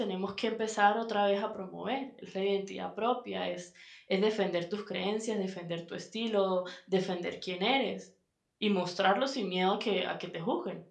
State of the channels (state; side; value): identical; both; correlation 1.00